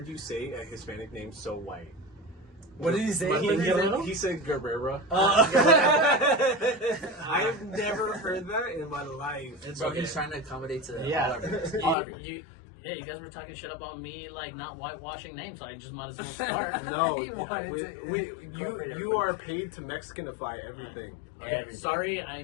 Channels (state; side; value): drops out; right; at 12.0 s